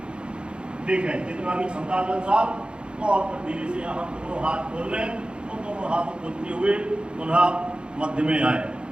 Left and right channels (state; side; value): late; left; 0.054 ms